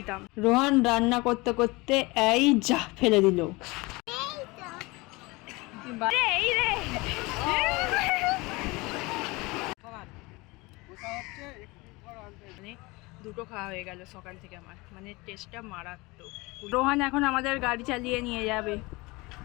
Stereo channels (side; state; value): right; quieter; 23.8 dB